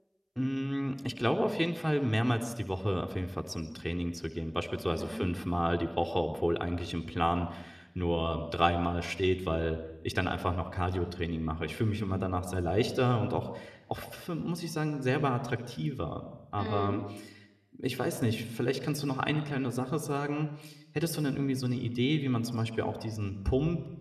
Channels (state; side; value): identical; both; correlation 1.00